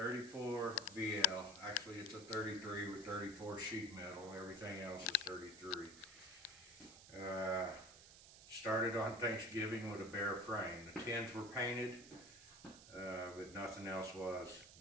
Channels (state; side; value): noise; right; hiss, 17 dB below the sound